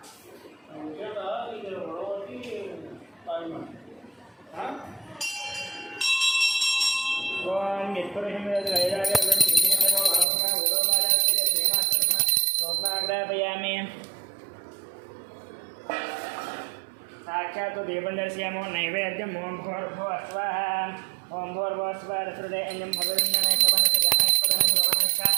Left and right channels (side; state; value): left; drops out; at 10.2 s